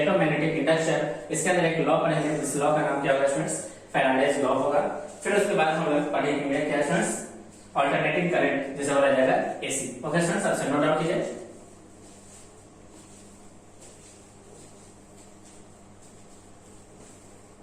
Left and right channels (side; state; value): both; identical; correlation 1.00